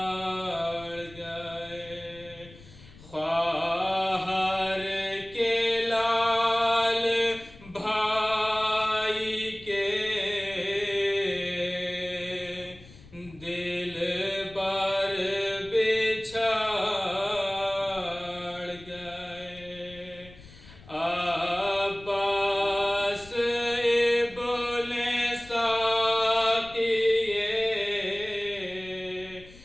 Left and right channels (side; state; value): left; noise; rumble, 21 dB below the sound